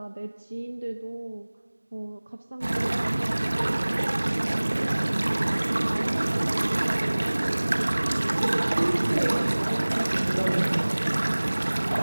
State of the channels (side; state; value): both; inverted; correlation -1.00